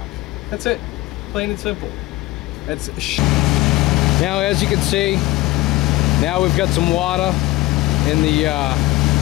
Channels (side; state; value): right; quieter; 18.7 dB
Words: That's it. Plain and simple. That's now, as you can see, now we've got some water in the